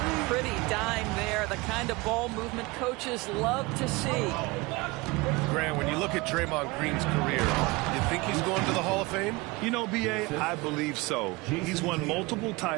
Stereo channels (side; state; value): left; quieter; 23.8 dB